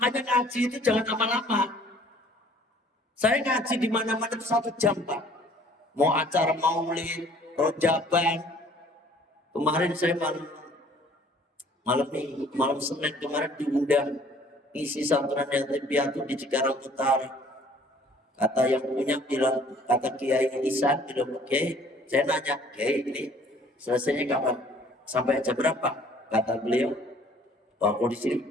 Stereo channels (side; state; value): both; normal; correlation 0.55